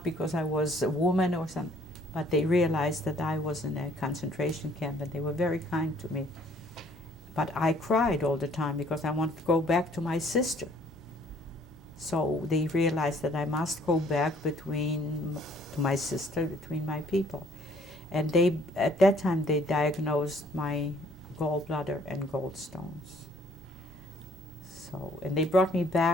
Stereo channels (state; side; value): normal; both; correlation 0.60